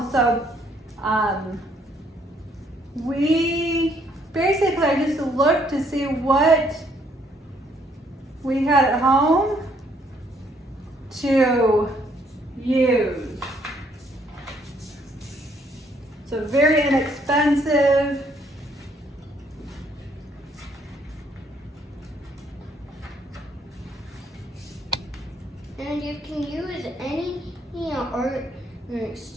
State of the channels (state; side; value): normal; both; correlation 0.67